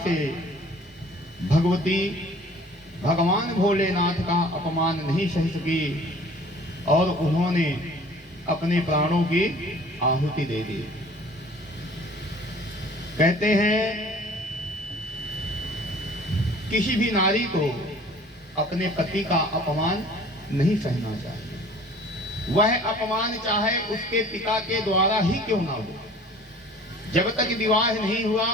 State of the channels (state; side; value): normal; both; correlation 0.49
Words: भगवती भगवान भोलेनाथ का अपमान नहीं सह सकी और उन्होंने अपने प्राणों की आहुति दे दी। कहते हैं किसी भी नारी को अपने पति का अपमान नहीं सहना चाहिए। वह अपमान चाहे उसके पिता के द्वारा ही क्यों ना हो, जब तक विवाह नहीं हुआ